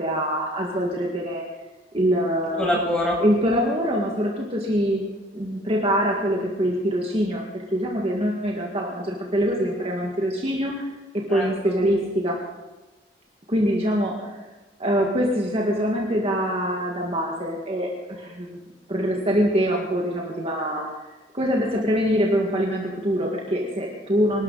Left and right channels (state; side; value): normal; both; correlation 0.59